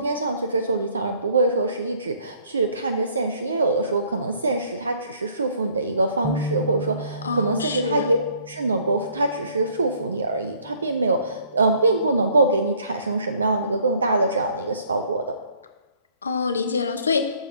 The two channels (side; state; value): both; inverted; correlation -0.61